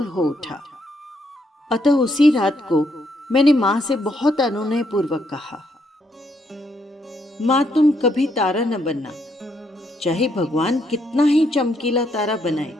हो उठा। अतः उसी रात को मैंने माँ से बहुत अनुनय पूर्वक कहा, माँ, तुम कभी तारा न बनना, चाहे भगवान कितना ही चमकीला तारा बनाए।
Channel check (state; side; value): normal; both; correlation 0.74